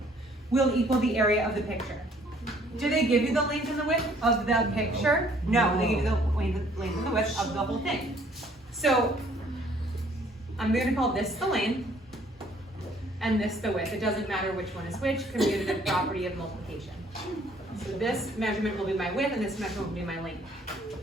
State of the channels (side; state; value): both; normal; correlation 0.60